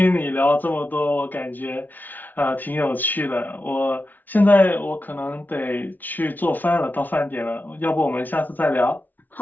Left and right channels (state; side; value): late; right; 0.083 ms